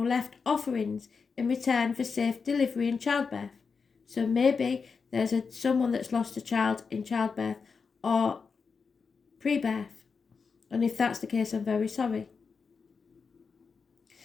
left offerings in return for safe delivery and childbirth. So maybe there's someone that's lost a child in childbirth or pre-birth. And if that's the case, I'm very sorry.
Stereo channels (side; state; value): right; quieter; 5.3 dB